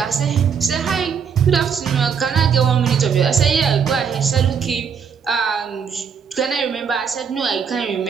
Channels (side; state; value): left; quieter; 6.7 dB